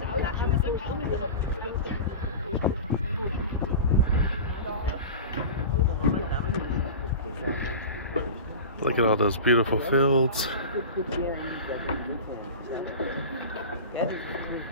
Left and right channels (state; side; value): inverted; both; correlation -0.31